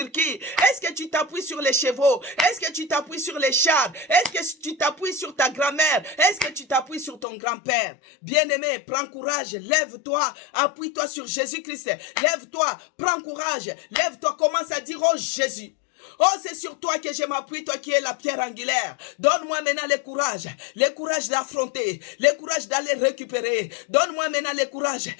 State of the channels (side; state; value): right; drops out; at 7.2 s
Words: qui? Est-ce que tu t'appuies sur les chevaux? Est-ce que tu t'appuies sur les chars? Est-ce que tu t'appuies sur ta grand-mère? Est-ce que tu t'appuies sur ton grand-père? Bien-aimé, prends courage, lève-toi, appuie-toi sur Jésus-Christ. Lève-toi, prends courage, lève-toi, commence à dire, oh Jésus. Oh, c'est sur toi que je m'appuie, toi qui es la pierre angulaire. Donne-moi maintenant le courage d'affronter, le courage d'aller récupérer. Donne-moi maintenant le courage.